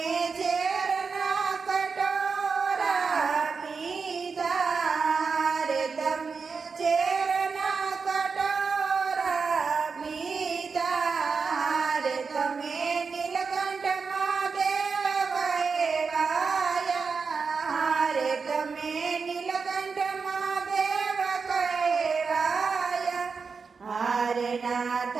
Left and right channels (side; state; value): left; quieter; 5.1 dB